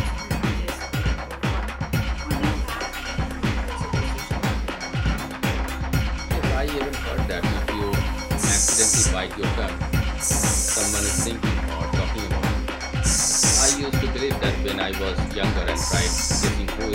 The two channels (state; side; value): identical; both; correlation 1.00